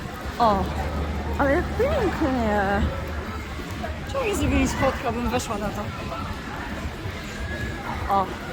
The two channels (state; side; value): identical; both; correlation 1.00